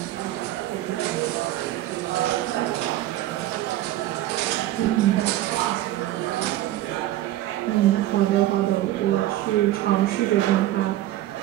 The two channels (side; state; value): left; quieter; 14.7 dB